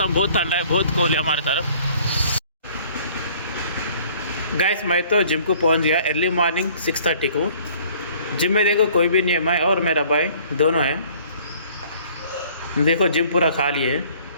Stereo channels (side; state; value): both; inverted; correlation -0.55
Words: बहुत ठंडा है, बहुत कूल है हमारे तरफ। गाइस मैं तो जिम को पहुंच गया अर्ली मॉर्निंग 6:30 को। जिम में देखो कोई भी नहीं है, मैं और मेरा भाई दोनों हैं। देखो जिम पूरा खाली है।